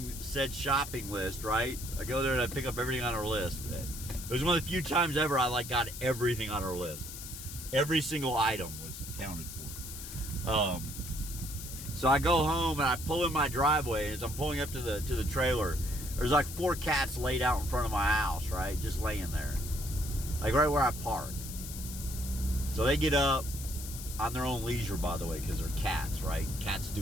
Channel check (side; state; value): left; noise; hiss, 10 dB below the sound